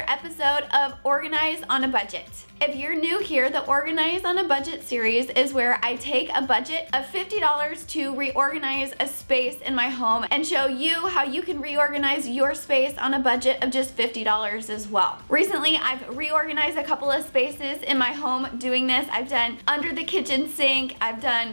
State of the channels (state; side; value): inverted; both; correlation -1.00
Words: episode of Organize on a Budget. If you're new here, the Organize on a Budget series is where I take a budget of $50 to reorganize a space in my home and show you how you can reorganize your space on a budget of just $50 as well. Recently, I've reorganized a couple of spaces in my home doing this. I've done under the kitchen sink, I've